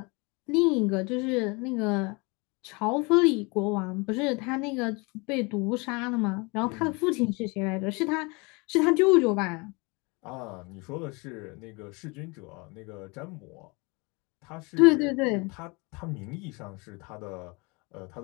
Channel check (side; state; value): right; quieter; 28.3 dB